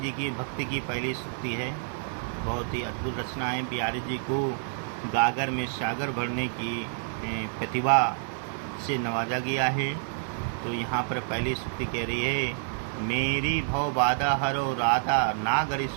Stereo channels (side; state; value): left; silent; 56 dB below the other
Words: की भक्ति की पहली स्तुति है। बहुत ही अद्भुत रचना है। बिहारी जी को गागर में सागर भरने की प्रतिभा से नवाजा गया है। तो यहाँ पर पहली स्तुति कह रही है, मेरी भव बाधा हरो राधा नागर